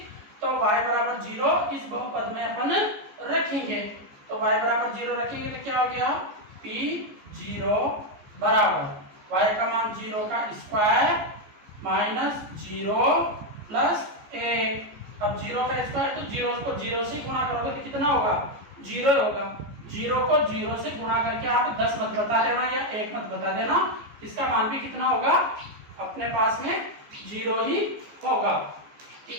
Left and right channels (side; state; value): left; late; 14 ms